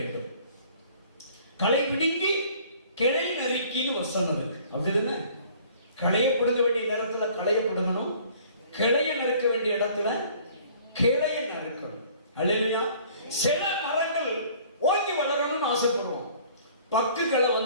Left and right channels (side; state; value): both; inverted; correlation -0.53